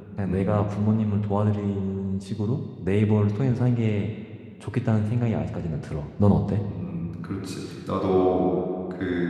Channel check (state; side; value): identical; both; correlation 1.00